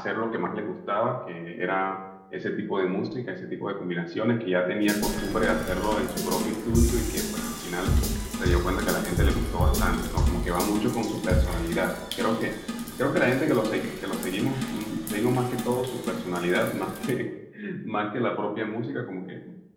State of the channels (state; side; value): identical; both; correlation 1.00